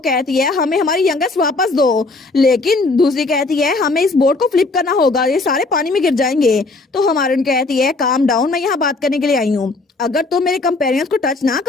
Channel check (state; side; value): quieter; right; 3.4 dB